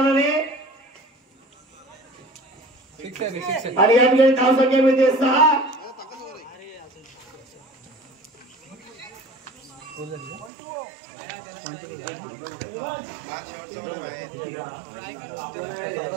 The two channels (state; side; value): drops out; left; at 10.5 s